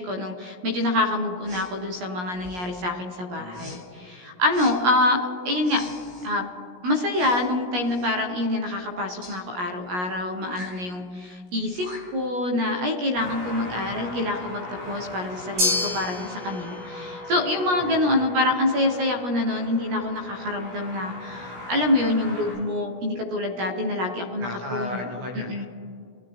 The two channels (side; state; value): left; late; 17 ms